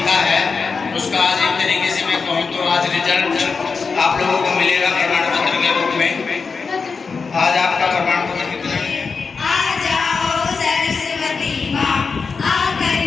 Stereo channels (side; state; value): right; quieter; 5.0 dB